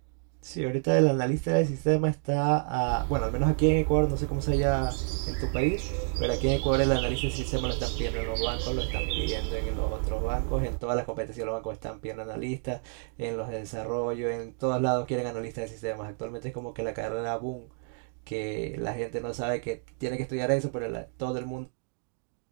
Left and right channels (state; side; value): silent; left; 58 dB below the other